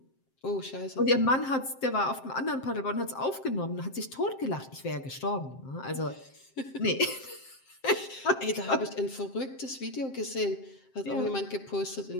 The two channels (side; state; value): right; late; 7.6 ms